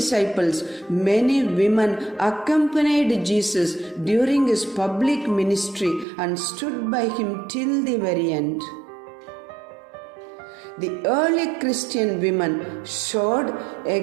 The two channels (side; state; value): left; drops out; at 6.1 s